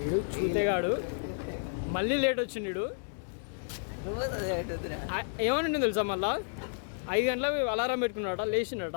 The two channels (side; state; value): right; silent; digital silence